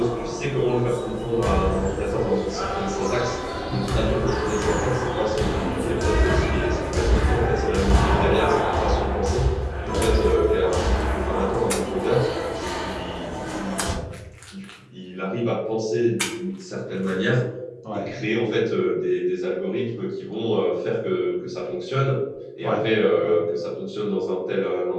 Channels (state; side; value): identical; both; correlation 1.00